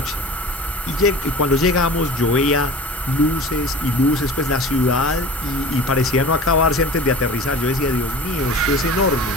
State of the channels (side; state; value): both; normal; correlation 0.38